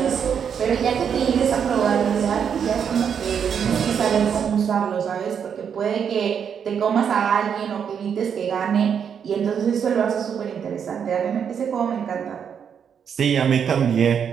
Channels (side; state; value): left; quieter; 7.6 dB